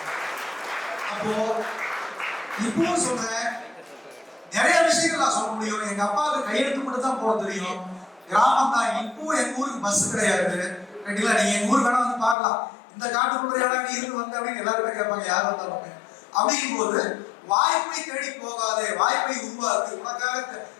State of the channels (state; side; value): drops out; right; at 12.4 s